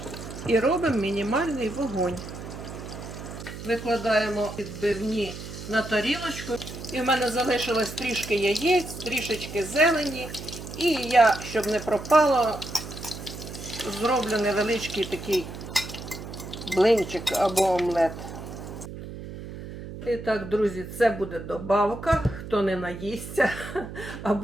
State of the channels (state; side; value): noise; right; hum, 11 dB below the sound